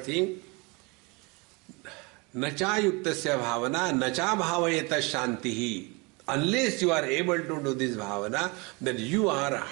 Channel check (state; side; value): quieter; left; 28.3 dB